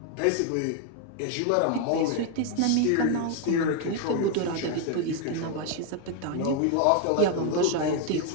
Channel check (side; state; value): both; different; correlation 0.01